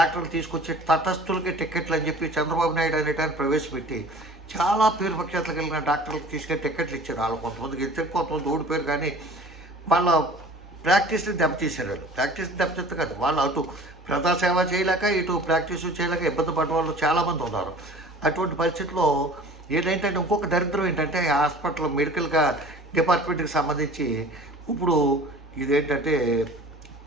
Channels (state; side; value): normal; both; correlation 0.45